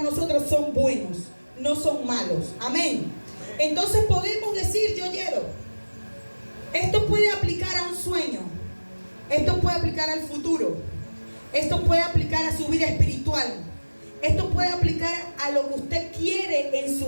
nosotros son buenos, no son malos. Amén. Entonces podemos decir, yo quiero. Esto puede aplicar a un sueño. Esto puede aplicar al futuro. Esto puede aplicar a su vida espiritual. Esto puede aplicar a lo que usted quiere en su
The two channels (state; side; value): inverted; both; correlation -1.00